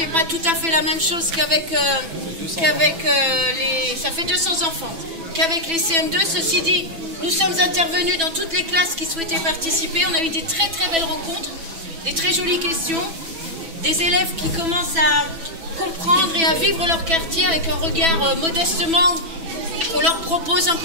pas tout à fait la même chose qu'avec les... Ça fait 200 enfants. Qu'avec les CM2, ceci dit, nous sommes intervenus dans toutes les classes qui souhaitaient participer. On a eu des très très belles rencontres, des très jolies questions, des élèves qui commencent à comprendre et à vivre leur quartier avec un regard modestement qu'on leur propose un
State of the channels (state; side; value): late; left; 6.1 ms